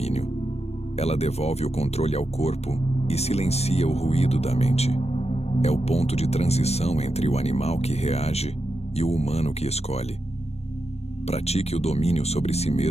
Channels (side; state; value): right; late; 0.31 ms